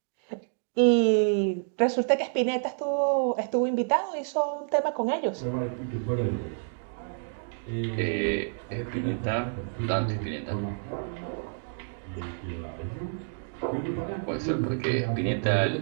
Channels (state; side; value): silent; left; digital silence